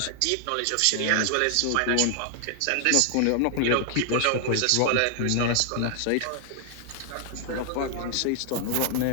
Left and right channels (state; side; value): different; both; correlation 0.00